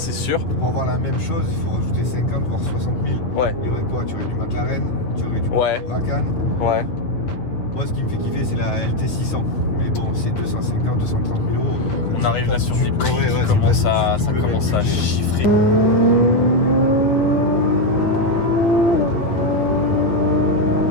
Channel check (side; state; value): right; late; 9.4 ms